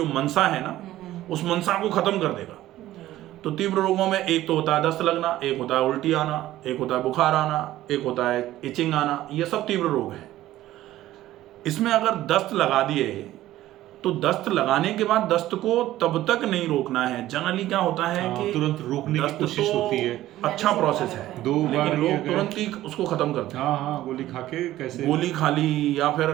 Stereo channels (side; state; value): left; quieter; 14.6 dB